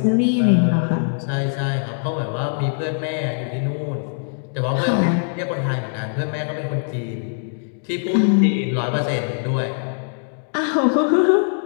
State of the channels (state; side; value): silent; right; digital silence